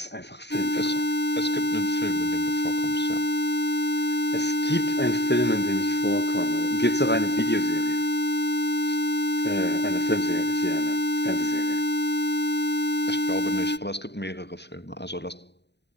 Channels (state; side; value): late; right; 0.50 ms